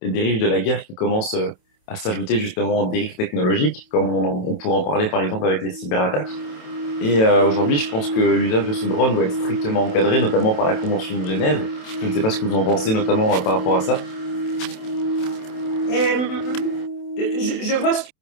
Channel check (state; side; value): late; right; 27 ms